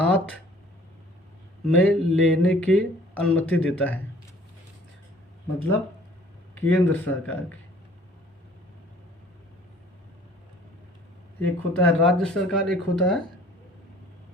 में लेने की अनुमति देता है। मतलब केंद्र सरकार की, एक होता है राज्य सरकार, एक होता है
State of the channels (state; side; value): normal; both; correlation 0.54